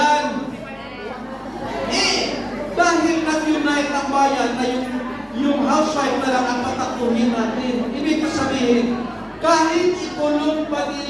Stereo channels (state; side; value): identical; both; correlation 1.00